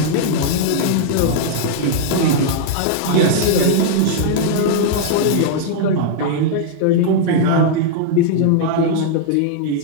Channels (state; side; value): different; both; correlation -0.01